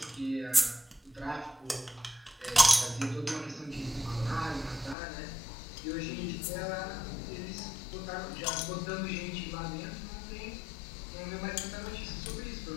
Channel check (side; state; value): right; drops out; at 5.0 s